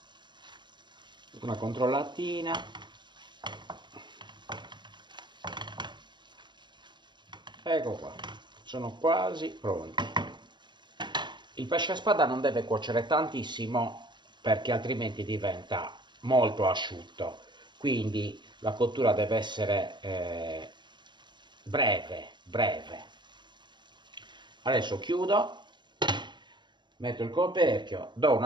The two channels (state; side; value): late; left; 0.22 ms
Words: Una controllatina. Ecco qua, sono quasi pronti. Il pesce a spada non deve cuocere tantissimo perché altrimenti diventa molto asciutto, quindi la cottura deve essere breve. Adesso chiudo, metto il coperchio, do